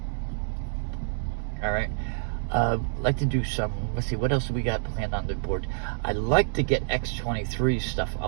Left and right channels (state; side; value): silent; left; digital silence